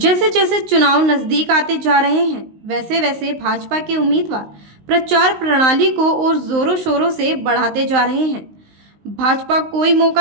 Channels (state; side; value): late; left; 19 ms